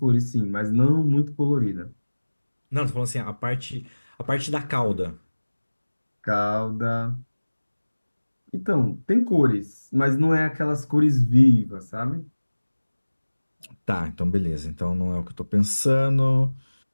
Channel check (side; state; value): both; inverted; correlation -1.00